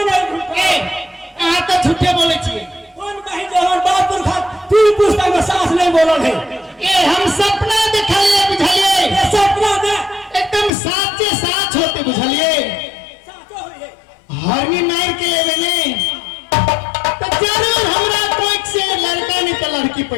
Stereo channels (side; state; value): right; drops out; at 10.7 s